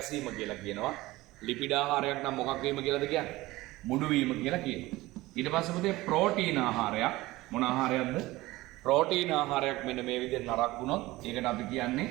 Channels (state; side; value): quieter; left; 18.9 dB